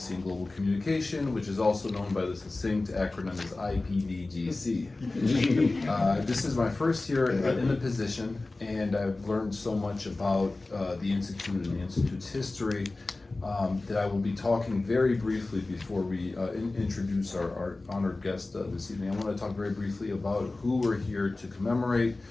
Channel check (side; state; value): right; quieter; 3.2 dB